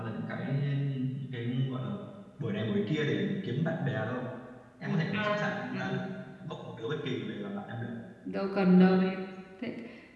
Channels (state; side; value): identical; both; correlation 1.00